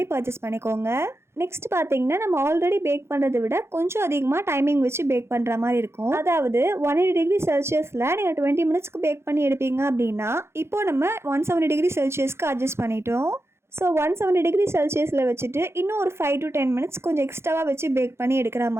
பர்ச்சேஸ் பண்ணிக்கோங்க. நெக்ஸ்ட் பார்த்தீங்கன்னா, நம்ம ஆல்ரெடி பேக் பண்ணுறதை விட கொஞ்சம் அதிகமாக டைமிங் வச்சு பேக் பண்ணுற மாதிரி இருக்கும். அதாவது 180 டிகிரி செல்சியஸில் நீங்கள் 20 மினிட்ஸ்க்கு பேக் பண்ணி எடுப்பீங்க அப்படின்னா, இப்போ நம்ம 170 டிகிரி செல்சியஸ்க்கு அட்ஜஸ்ட் பண்ணிட்டோம். ஸோ 170 டிகிரி செல்சியஸில் வச்சுட்டு இன்னும் ஒரு 5 to 10 மினிட்ஸ் கொஞ்சம் எக்ஸ்ட்ராவாக வச்சு பேக் பண்ணி எடுக்கிற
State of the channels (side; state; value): left; late; 0.12 ms